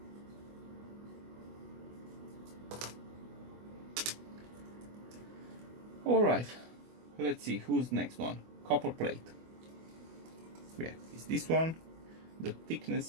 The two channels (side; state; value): left; late; 24 ms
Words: All right, let's see who's next one. Copperplate. Yeah, it's this one. The